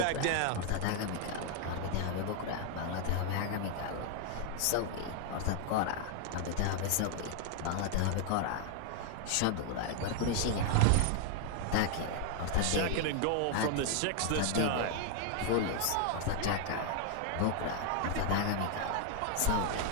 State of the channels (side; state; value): both; different; correlation 0.00